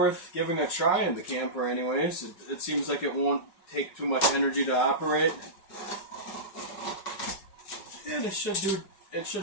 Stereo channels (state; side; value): late; right; 5.5 ms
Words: giving a try in the camper anyways. It seems like it won't take too much energy to operate. And it should